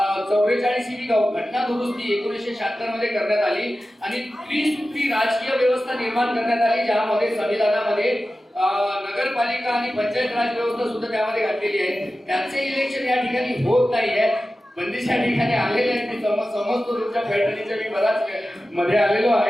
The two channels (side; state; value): both; normal; correlation 0.94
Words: 44वी घटना दुरुस्ती 1976 मध्ये करण्यात आली आणि त्रिसूत्री राजकीय व्यवस्था निर्माण करण्यात आली, ज्यामध्ये संविधानामध्ये नगरपालिका आणि पंचायत राज व्यवस्था सुद्धा त्यामध्ये घातलेली आहे. त्याचे इलेक्शन या ठिकाणी होत नाहीये. बंदिशा ठिकाणी आलेले आहेत, मी समजतो तुमच्या पैठणीच्या, मी बराच मध्ये आलेलो